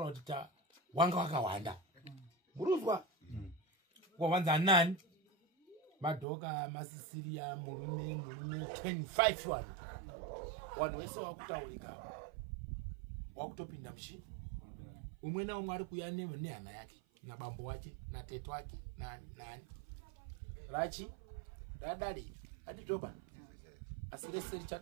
kuti wanga wakawanda. Muruzwa? Wawanza nani? Madoka, masisiria, murume 10-5 wanu. Wanu wese wakutaurika. Wakutopinda mshini. Umwe na umwe ari kuya nehama yake. Na bambo wake, na teto wake, na nani. Rachi, radari, aditoba. Asireseri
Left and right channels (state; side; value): drops out; left; at 6.2 s